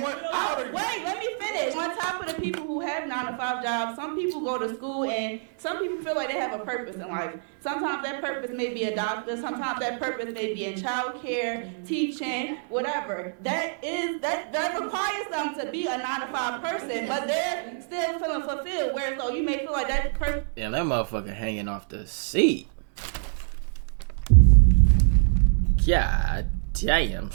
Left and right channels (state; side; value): silent; left; digital silence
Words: Wait, let me finish. On top of the people who have 9-to-5 jobs, some people go to school and some people feel like they have a purpose in life. Sometimes that purpose may be a doctor. Sometimes that purpose may be in childcare, teaching, whatever. That requires them to be a 9-to-5 person, but they're still feeling fulfilled. Whereas, you may feel like that person. Yeah, that motherfucker hanging off the seat. God damn,